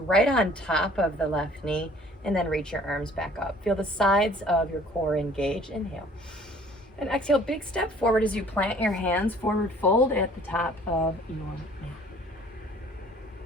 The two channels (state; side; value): normal; both; correlation 0.54